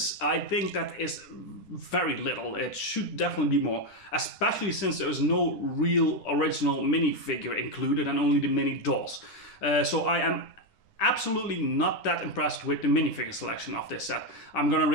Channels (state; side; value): late; right; 10 ms